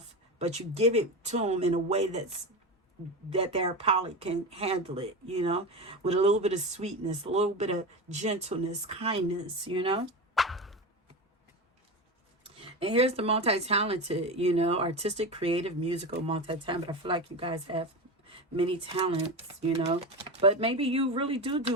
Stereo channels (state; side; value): normal; both; correlation 0.22